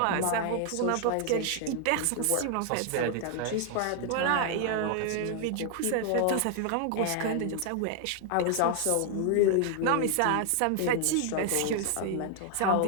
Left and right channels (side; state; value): both; different; correlation 0.00